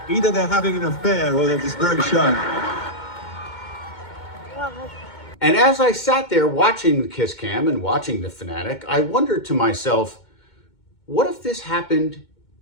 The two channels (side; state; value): right; late; 2.2 ms